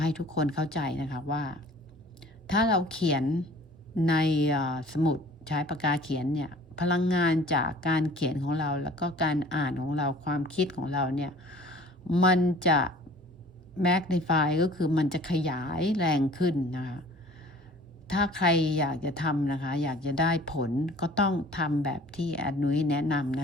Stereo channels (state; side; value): normal; both; correlation 0.49